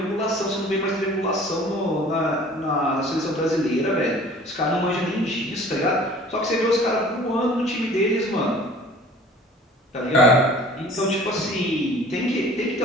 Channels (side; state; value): both; normal; correlation 0.48